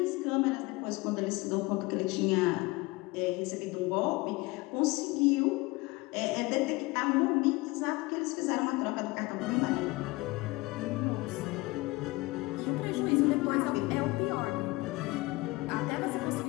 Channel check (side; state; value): right; quieter; 22.6 dB